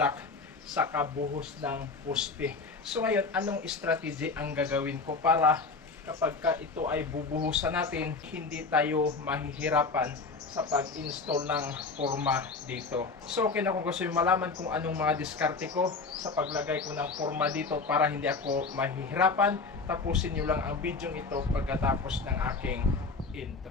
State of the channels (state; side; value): quieter; right; 4.2 dB